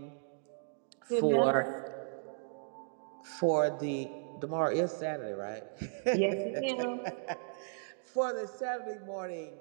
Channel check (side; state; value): left; silent; digital silence